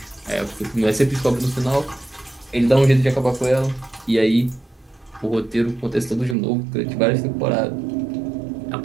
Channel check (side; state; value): left; drops out; at 6.4 s